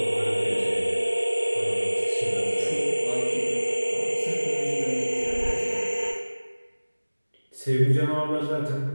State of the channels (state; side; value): inverted; both; correlation -1.00